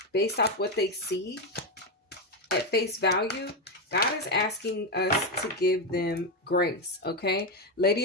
based off what they see at face value, God is asking us to give them grace, okay?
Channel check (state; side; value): normal; both; correlation 0.09